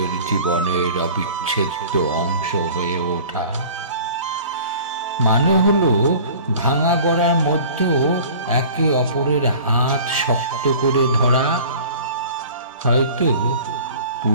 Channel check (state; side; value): inverted; both; correlation -0.44